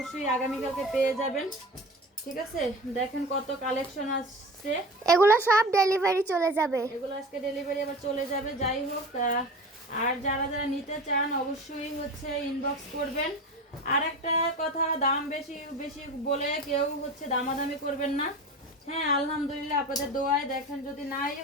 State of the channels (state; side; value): normal; both; correlation 0.33